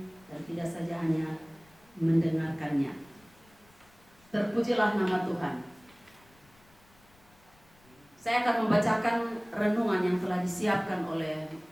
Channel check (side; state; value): left; noise; rumble, 29 dB below the sound